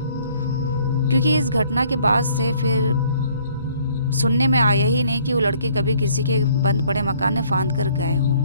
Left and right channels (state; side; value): inverted; both; correlation -0.60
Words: क्योंकि इस घटना के बाद से फिर सुनने में आया ही नहीं कि वो लड़के कभी किसी के बंद पड़े मकान में फांद कर गए हों।